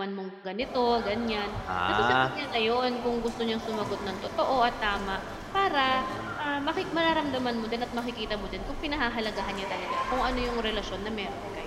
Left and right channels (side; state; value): both; identical; correlation 1.00